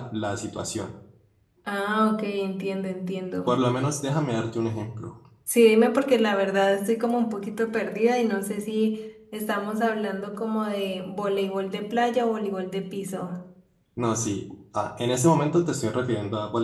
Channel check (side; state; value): both; identical; correlation 1.00